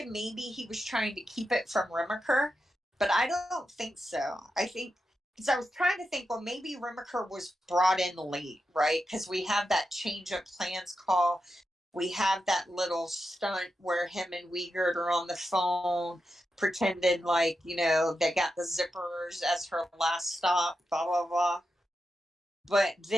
maybe he was trying to keep it from Remaker, but I don't think so. I think, because I was trying to think, well, maybe Remaker was brought in late, right? Because we have that change of plans call we have that little stunt where him and Wiegert are on the phone, pretending like, you know, they got the zippers as her last stop, blah, blah, blah. But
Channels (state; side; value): normal; both; correlation 0.88